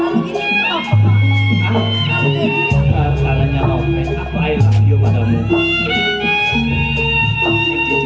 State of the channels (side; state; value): both; identical; correlation 1.00